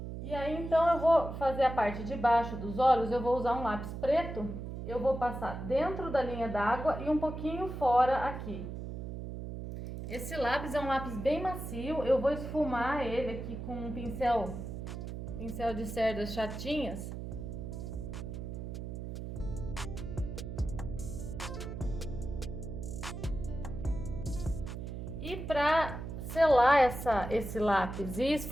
E aí, então, eu vou fazer a parte de baixo dos olhos, eu vou usar um lápis preto. Eu vou passar dentro da linha d'água e um pouquinho fora aqui. Esse lápis é um lápis bem macio, eu vou esfumar ele aqui com um pincel de cerdas chatinhas. E para selar esse lápis e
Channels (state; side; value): noise; right; hum, 7 dB below the sound